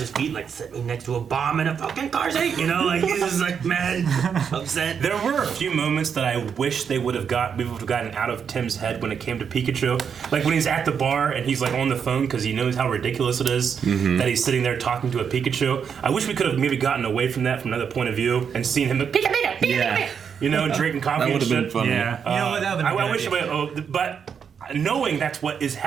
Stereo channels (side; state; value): left; quieter; 7.1 dB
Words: his feet, like sit me next to a bomb in a fucking car seat. You know, like he's just like mad, upset. there were a few moments that I wish we would have gotten out of Tim's head when it came to Pikachu. Like when he's at the bar and he's like on the phone because he knows how ridiculous it is that he's sitting there talking to a Pikachu. I wish we could have maybe gotten away from that from another point of view and seen him like, Pika, Pika, Pika, Pika, you know, drinking coffee That and would have shit. been funny. Yeah. You know what? That would have been I wish, but knowing that's what is